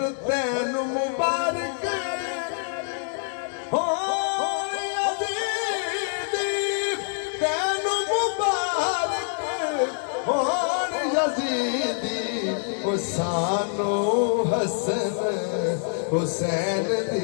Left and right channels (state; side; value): silent; right; 61 dB below the other